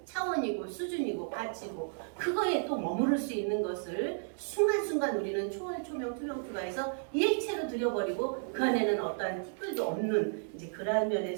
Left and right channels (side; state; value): left; silent; digital silence